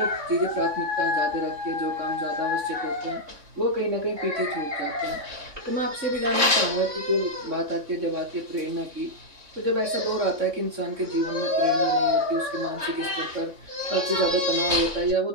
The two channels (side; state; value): left; late; 3.6 ms